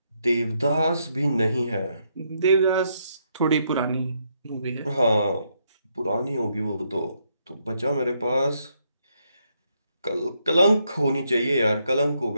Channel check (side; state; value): both; inverted; correlation -0.76